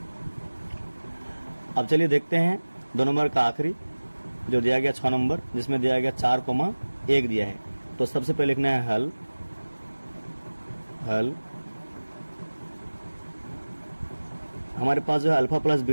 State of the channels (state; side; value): inverted; both; correlation -1.00